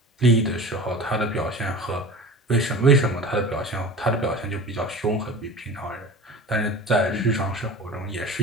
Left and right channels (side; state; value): both; normal; correlation 0.36